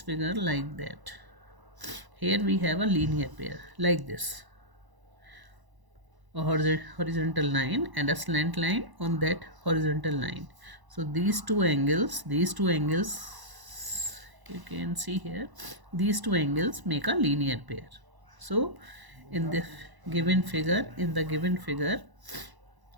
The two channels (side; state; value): left; late; 1.0 ms